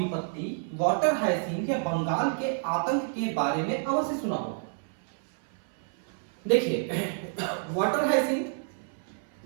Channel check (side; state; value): left; silent; 59 dB below the other